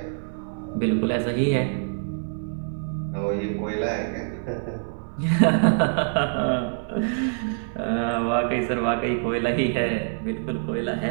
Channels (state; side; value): silent; left; 57 dB below the other